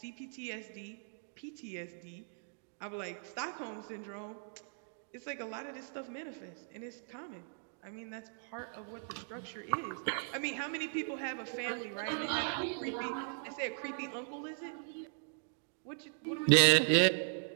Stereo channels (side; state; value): left; silent; digital silence